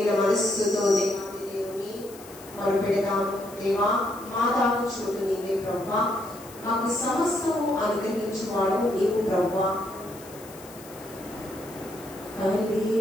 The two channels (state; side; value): noise; left; hiss, 19 dB below the sound